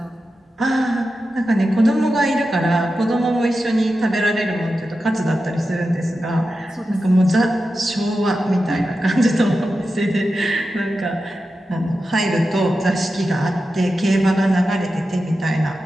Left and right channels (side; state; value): both; normal; correlation 0.91